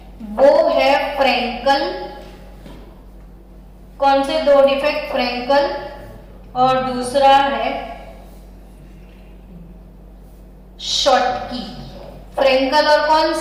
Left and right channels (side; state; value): both; identical; correlation 1.00